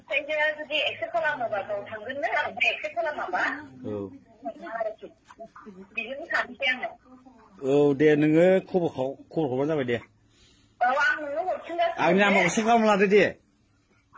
जुदि एक्सेप्ट खालामोबा गाव थांगोननो ओमफ्राय एक्सेप्ट खालामाबा बिजोंनो थानोसै आङो औ दे नोङो खबर हरबानो जाबाय दे औ आं नोंनो हरफिनगासिनो आंनि नाम्बारखौ सेभ खालामना लादो दे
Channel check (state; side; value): identical; both; correlation 1.00